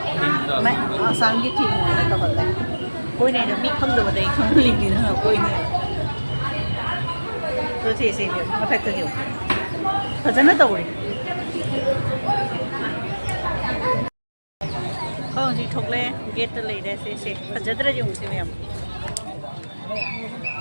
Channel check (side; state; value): both; inverted; correlation -1.00